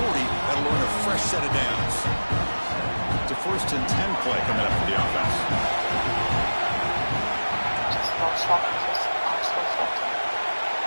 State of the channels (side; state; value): both; inverted; correlation -1.00